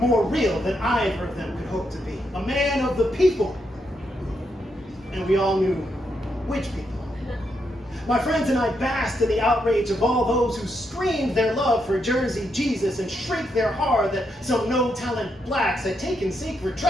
real than either of them could hope to be. A man of the people. And we all knew which people. My friends and I basked in the outrage of all those who screamed their love for Jersey Jesus and shrieked their horror that some no-talent blacks had taken sacred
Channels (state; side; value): normal; both; correlation 0.80